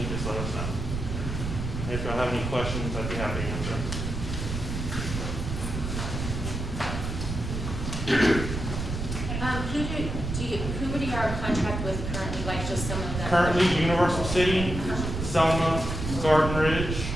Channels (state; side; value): noise; right; rumble, 4 dB below the sound